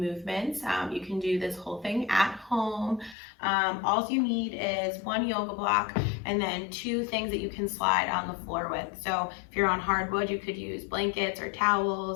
You can do this whole thing at home. All you need is 1 yoga block and then 2 things that you can slide on the floor with. So if you're on hardwood, you could use blankets or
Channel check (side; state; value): right; drops out; at 3.2 s